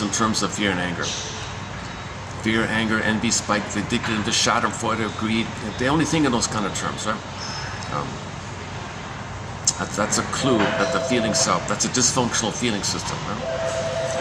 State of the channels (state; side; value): identical; both; correlation 1.00